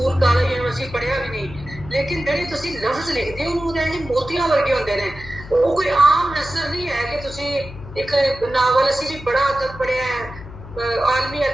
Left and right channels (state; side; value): noise; left; hum, 14 dB below the sound